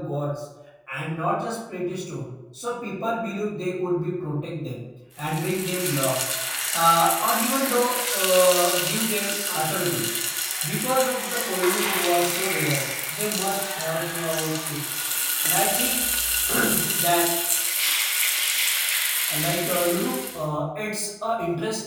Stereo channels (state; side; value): identical; both; correlation 1.00